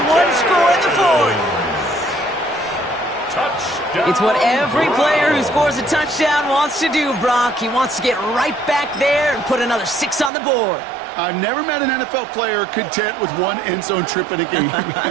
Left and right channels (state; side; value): drops out; left; at 10.3 s